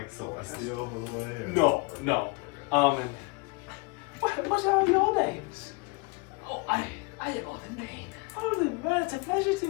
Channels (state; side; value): quieter; right; 28.7 dB